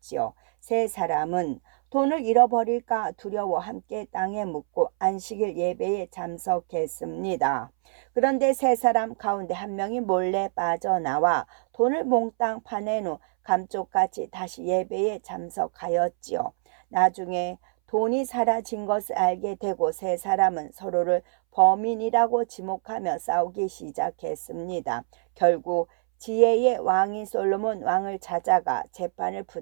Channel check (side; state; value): left; silent; 61 dB below the other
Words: 3사람은 돈을 잃어버릴까 두려워 함께 땅에 묻고 안식일 예배에 참석했습니다. 그런데 3사람 가운데 한 명이 몰래 빠져나와 돈을 몽땅 파낸 후 감쪽같이 다시 예배에 참석하였지요. 나중에 돈이 사라진 것을 알게 되고 3사람은 서로를 범인이라고 지목하며 싸우기 시작했습니다. 결국 지혜의 왕인 솔로몬 왕을 찾아가 재판을